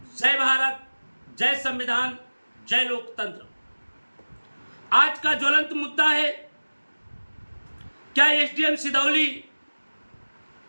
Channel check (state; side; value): inverted; both; correlation -1.00